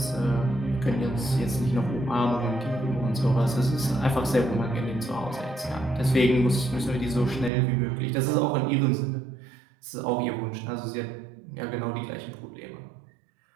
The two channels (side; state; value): left; drops out; at 7.5 s